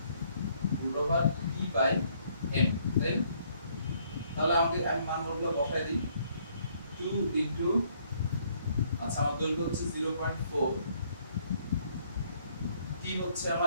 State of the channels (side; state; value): both; inverted; correlation -0.66